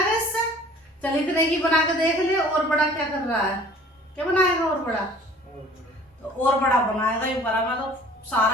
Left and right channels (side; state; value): both; normal; correlation 0.50